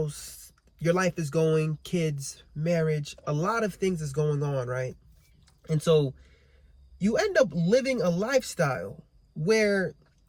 your life is going, kids, marriage, a lot of things is going on, right? And so you end up living a lifestyle where,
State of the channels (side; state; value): both; identical; correlation 1.00